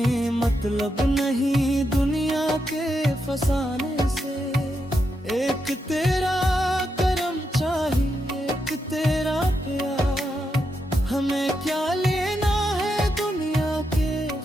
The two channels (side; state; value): both; normal; correlation 0.84